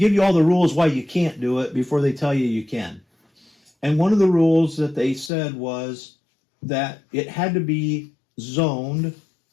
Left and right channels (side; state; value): right; drops out; at 5.3 s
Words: you all the rules why you can't do it before they tell you you can. And one of the rules that they said was that it had to be zoned,